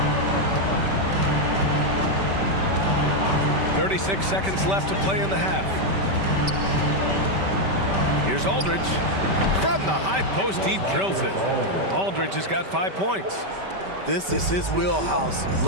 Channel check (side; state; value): left; late; 5.1 ms